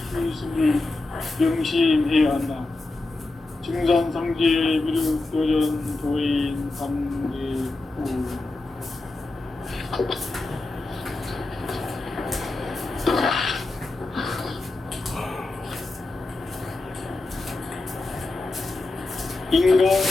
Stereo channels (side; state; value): right; quieter; 3.1 dB